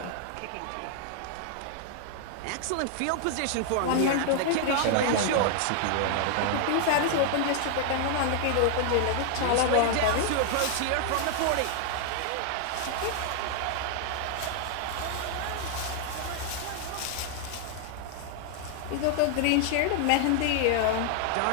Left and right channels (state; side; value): different; both; correlation 0.00